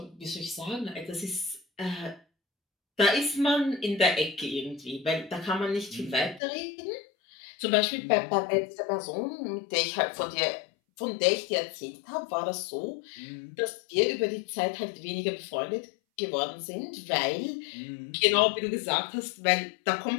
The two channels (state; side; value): drops out; right; at 6.4 s